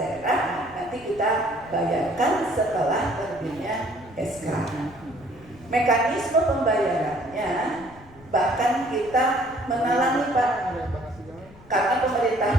nanti kita bayarkan setelah terbitnya SK. Mekanisme pembayarannya bahkan kita menalangi Pak, karena pemerintah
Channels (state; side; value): noise; left; rumble, 22 dB below the sound